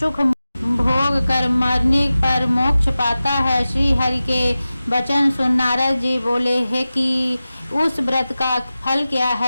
भोग कर मरने पर मोक्ष पाता है। श्री हरि के वचन सुन नारद जी बोले, है कि उस व्रत का फल क्या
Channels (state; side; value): inverted; both; correlation -0.95